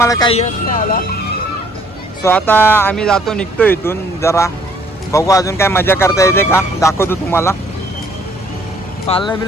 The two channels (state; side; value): normal; both; correlation 0.61